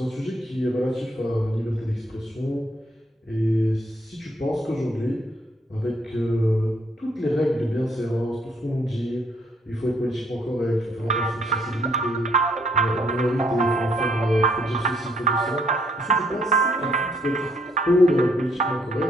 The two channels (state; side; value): normal; both; correlation 0.69